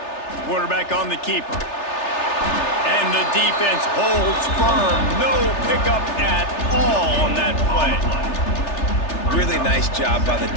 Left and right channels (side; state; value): right; late; 3.3 ms